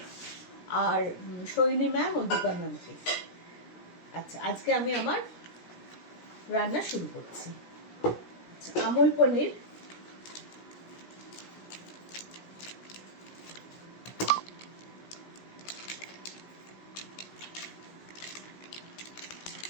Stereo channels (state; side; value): late; right; 17 ms